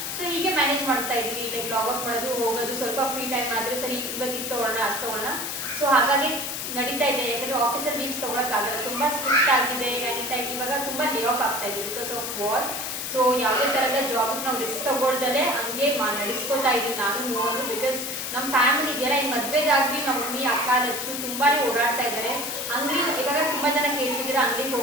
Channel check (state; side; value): noise; left; hiss, 4 dB below the sound